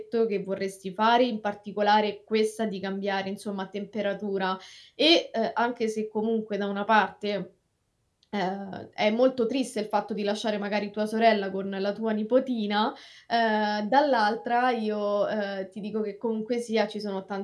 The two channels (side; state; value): both; identical; correlation 1.00